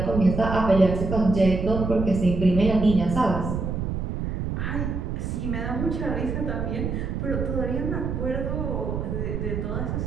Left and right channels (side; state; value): right; noise; rumble, 3 dB below the sound